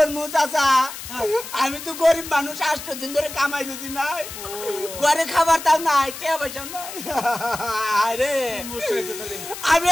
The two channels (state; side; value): noise; left; hiss, 11 dB below the sound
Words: চাচা আমি তো গরিব মানুষ 8 দিন ধরে কামাই রুজি নাই ঘরে খাবার তাও নাই কে পয়সা নাই আরে আমি